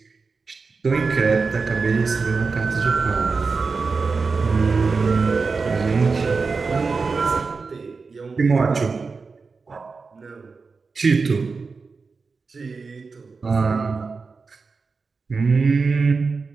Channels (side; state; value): left; quieter; 4.5 dB